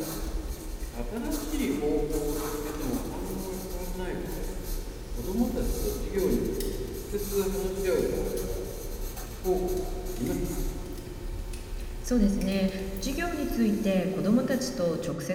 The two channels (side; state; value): both; identical; correlation 1.00